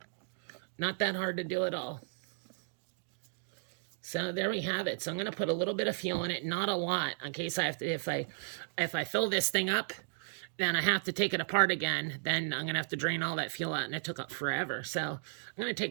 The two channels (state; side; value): silent; left; digital silence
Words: Not that hard to do at all. So there we have it. So I'm going to put a little bit of fuel in it, not a lot, in case I have to, if I fill this thing up, then I have to take it apart again. Then I'm going to have to drain all that fuel out, and it took up forever. So I'm going to